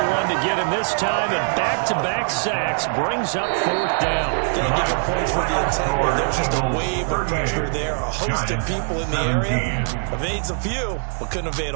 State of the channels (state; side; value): silent; left; 58 dB below the other